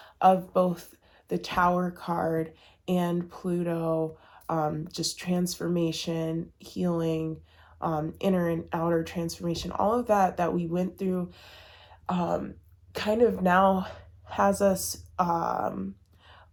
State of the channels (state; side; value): identical; both; correlation 1.00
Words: of both the Tower card and Pluto, just transformation, healing, inner and outer transformation, all of that we went through kind of now has us a